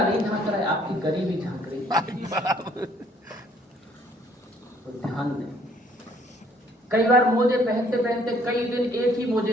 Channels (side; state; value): both; normal; correlation 0.62